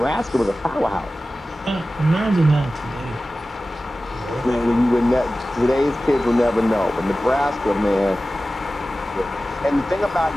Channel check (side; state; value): both; normal; correlation 0.96